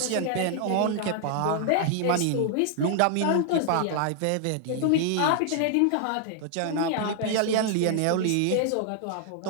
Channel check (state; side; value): different; both; correlation 0.00